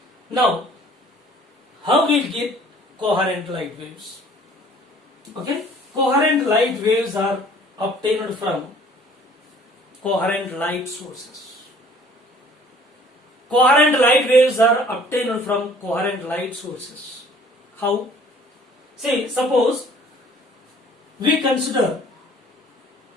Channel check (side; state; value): both; normal; correlation 0.53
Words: Now, how we get coherent light waves? Okay? Coherent light waves are obtained from coherent light sources. Coherent light waves are obtained from coherent light sources. How? See, suppose we consider